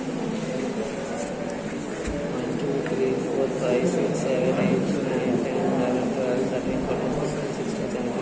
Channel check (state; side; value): identical; both; correlation 1.00